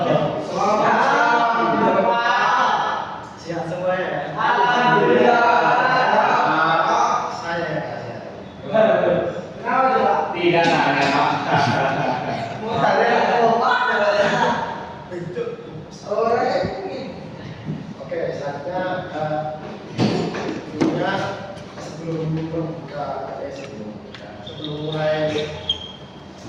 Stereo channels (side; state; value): both; identical; correlation 1.00